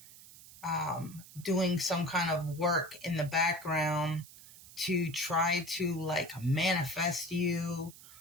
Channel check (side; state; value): right; noise; hiss, 19 dB below the sound